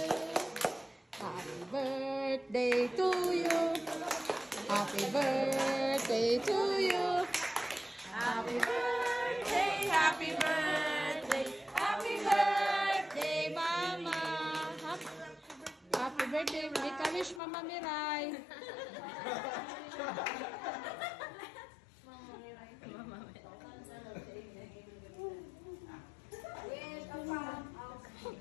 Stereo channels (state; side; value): drops out; right; at 17.4 s